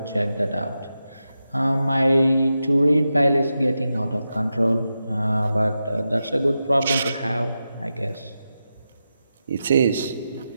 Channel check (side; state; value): both; inverted; correlation -0.90